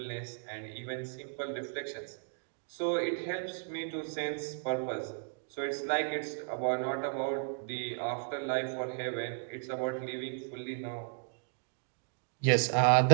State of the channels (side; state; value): left; silent; digital silence